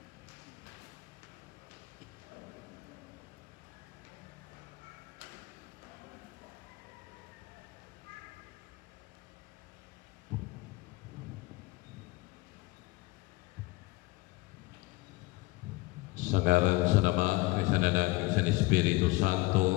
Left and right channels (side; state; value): right; quieter; 22.0 dB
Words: Sa ngalan sa Ama, kay sa Anak, kay sa Espiritu Santo.